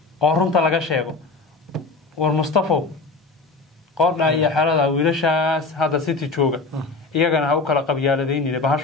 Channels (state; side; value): quieter; right; 3.7 dB